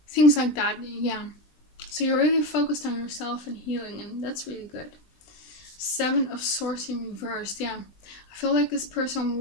things like that. Yeah, so you're really focused on yourself and healing, and that's really good. 7 of Swords in reverse. Yeah, I feel like this person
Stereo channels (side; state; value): right; late; 20 ms